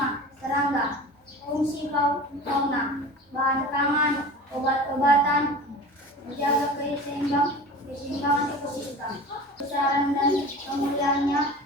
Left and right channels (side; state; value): both; normal; correlation 0.37